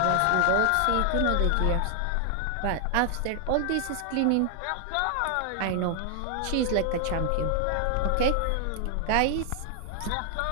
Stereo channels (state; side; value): different; both; correlation 0.00